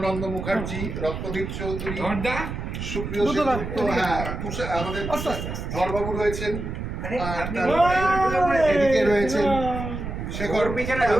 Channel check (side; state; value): right; noise; rumble, 6 dB below the sound